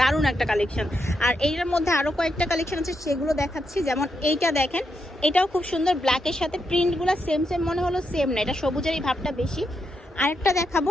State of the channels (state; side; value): normal; both; correlation 0.83